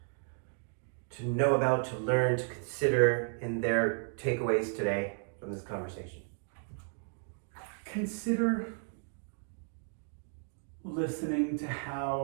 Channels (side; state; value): left; silent; 55 dB below the other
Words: to know about, to learn, to consider in their takeaways today from this conversation? Consider listening to